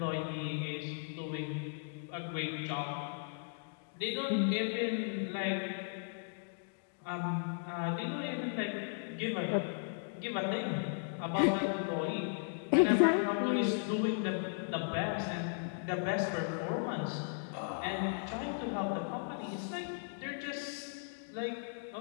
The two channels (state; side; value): silent; right; digital silence